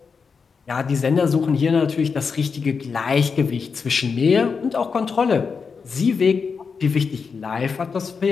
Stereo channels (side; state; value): right; quieter; 5.4 dB